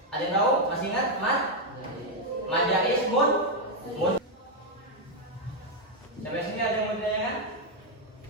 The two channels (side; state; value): both; normal; correlation 0.00